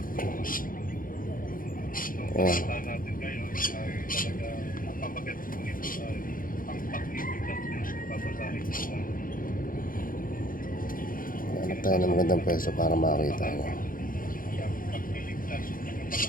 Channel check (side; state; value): right; late; 0.40 ms